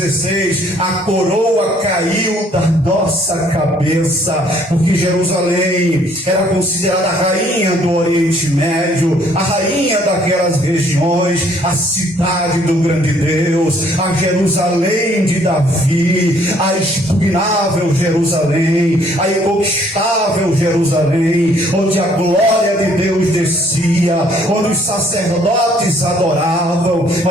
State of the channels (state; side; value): normal; both; correlation 0.63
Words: A coroa caiu da nossa cabeça, porque Jerusalém era considerada a rainha do Oriente Médio, a rainha daquelas regiões, a cidade do grande Deus, a Jerusalém de Davi, a expugnável Jerusalém, a inconquistável Jerusalém, onde a glória de Deus descia, onde os sacerdotes adoravam.